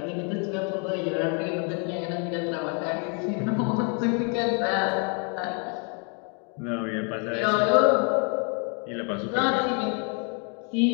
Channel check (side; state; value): right; quieter; 38.2 dB